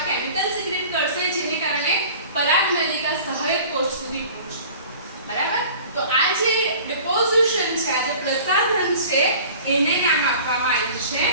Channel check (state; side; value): inverted; both; correlation -0.44